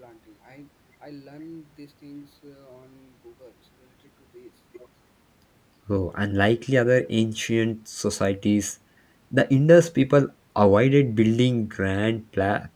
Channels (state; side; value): identical; both; correlation 1.00